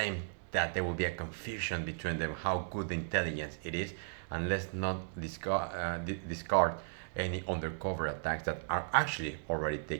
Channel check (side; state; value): left; silent; 54 dB below the other